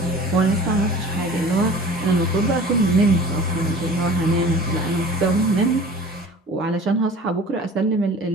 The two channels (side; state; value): both; normal; correlation 0.43